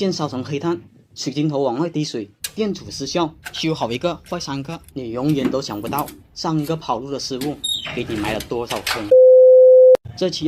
烧成黑炭，水晶头往外滴水，电阻失效，修好一个坏3个，你永远都想不到上个跑路的师傅给你埋了多少坑。这期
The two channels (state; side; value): identical; both; correlation 1.00